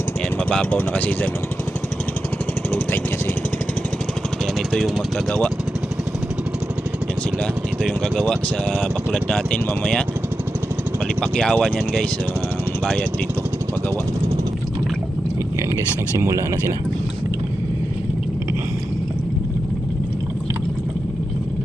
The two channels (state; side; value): normal; both; correlation 0.90